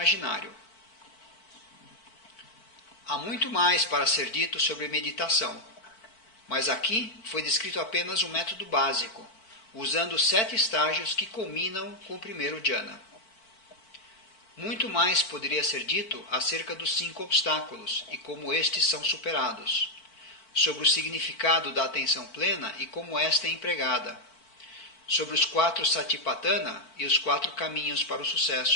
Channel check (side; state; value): right; late; 4.5 ms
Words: Há muito mais para ser dito sobre meditação, mas aqui foi descrito apenas o método básico, usando 7 estágios que culminam com o primeiro jhana. Muito mais poderia ser dito acerca dos 5 obstáculos e como estes são superados, sobre o significado da atenção plena e como esta é empregada, sobre os 4 satipatthana e os 4 caminhos para o